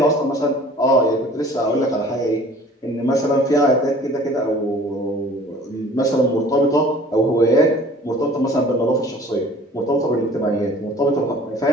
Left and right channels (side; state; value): both; normal; correlation 0.48